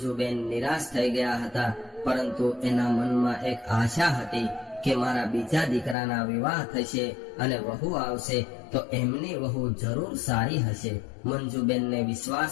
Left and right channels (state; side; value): drops out; right; at 6.0 s